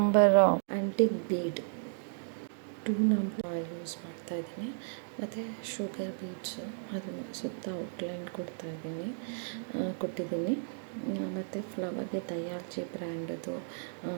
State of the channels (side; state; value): left; silent; digital silence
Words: antique bead 2 number use ಮಾಡ್ತಾಯಿದ್ದೀನಿ. ಮತ್ತು ಶುಗರ್ ಬೀಡ್ಸು ಅದನ್ನು ಸುತ್ತ ಔಟ್ಲೈನ್ ಕೊಟ್ಟಿದ್ದೀನಿ. ಮತ್ತು ಫ್ಲವರ್ಗೆ ದಯಾಲ್ಜಿ ಬ್ರ್ಯಾಂಡದು